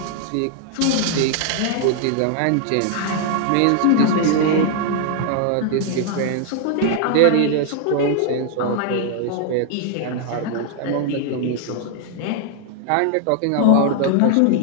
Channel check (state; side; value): different; both; correlation 0.00